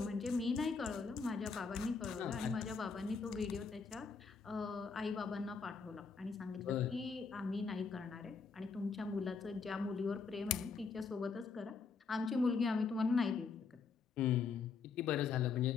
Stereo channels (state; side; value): quieter; right; 5.1 dB